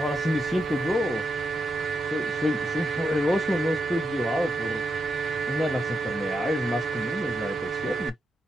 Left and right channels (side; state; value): both; normal; correlation 0.85